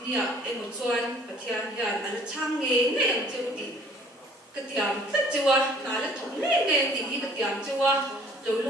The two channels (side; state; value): both; normal; correlation 0.55